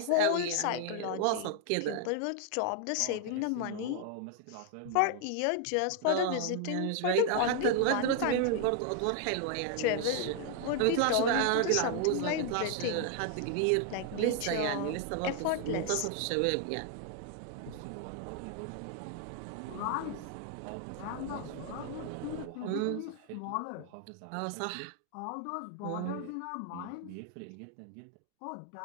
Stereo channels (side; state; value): both; different; correlation 0.00